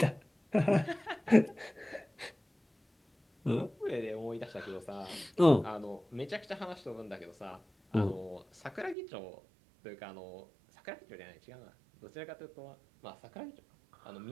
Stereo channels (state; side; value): drops out; left; at 9.0 s